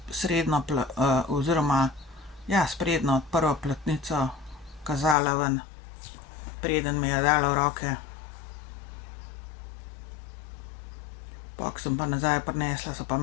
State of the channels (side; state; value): right; drops out; at 5.2 s